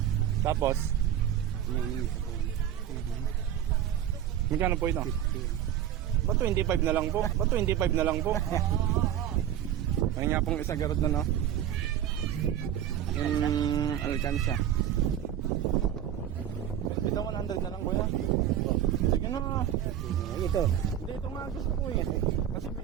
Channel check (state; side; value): quieter; left; 10.7 dB